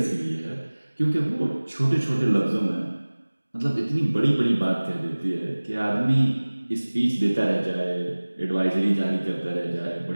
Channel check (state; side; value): inverted; both; correlation -1.00